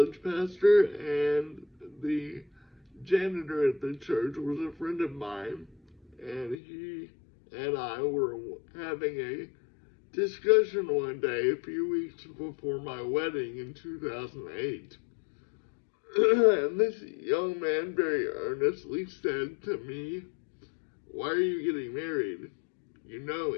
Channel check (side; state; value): right; drops out; at 6.6 s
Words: pastor, and the janitor at the church was a friend of mine, and he and I were having a discussion one day a few weeks before my wedding in 2008. And this young man very earnestly said to me, "Why are you getting married? You know